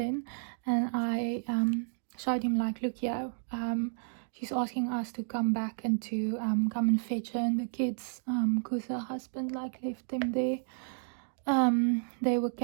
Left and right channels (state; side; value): silent; left; digital silence